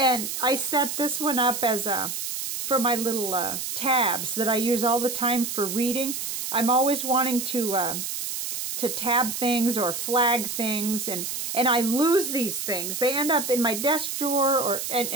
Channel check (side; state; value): right; noise; hiss, 4 dB below the sound